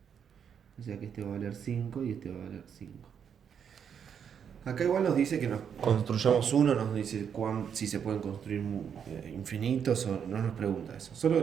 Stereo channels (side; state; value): left; quieter; 7.7 dB